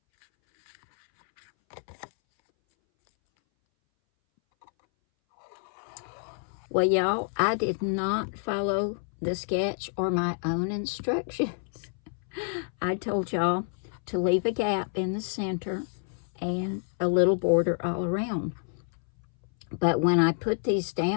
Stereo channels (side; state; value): right; silent; 59 dB below the other